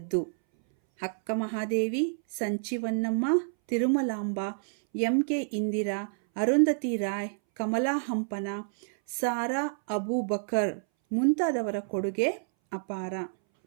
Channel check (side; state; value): left; silent; 59 dB below the other